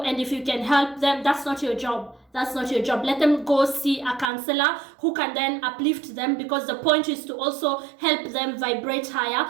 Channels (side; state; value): left; drops out; at 4.3 s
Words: if you can help them, that's not your job. That's not your job. Let them go see a counselor who can then uplift them, because the point is to also help them vibrate higher,